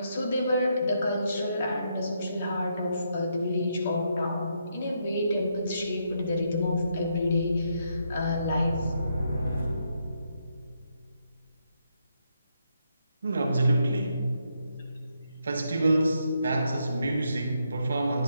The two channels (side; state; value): both; inverted; correlation -0.78